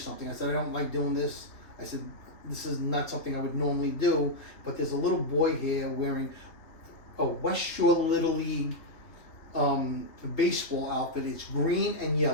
I said, I don't like doing this. I said, this is not something I would normally do, but there's a little boy here wearing a West Shore Little League baseball outfit. It's green and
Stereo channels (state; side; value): late; right; 3.0 ms